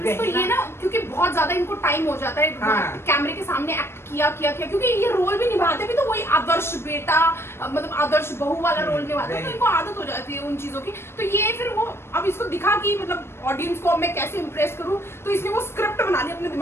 तो वही ये ना क्योंकि बहुत ज्यादा इनको टाइम हो जाता है हाँ। कैमरे के सामने एक्ट किया क्योंकि ये रोल भी निभाते भी तो वही आदर्श बेटा मतलब आदर्श बहू वाला रोल निभाते हैं, तो इनको आदत हो जाती है उन चीजों की। तो ये फिर वो अब इसको दिखा कि मतलब ऑडियंस को अब मैं कैसे इंप्रेस करूं, तो इसने वो स्क्रिप्ट बना ली अपने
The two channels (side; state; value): right; late; 0.12 ms